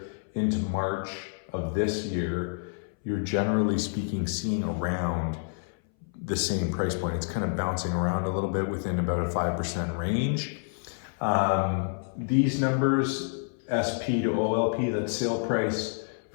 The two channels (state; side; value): silent; right; 59 dB below the other